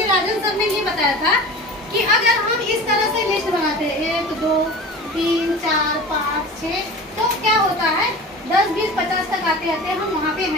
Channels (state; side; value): normal; both; correlation 0.35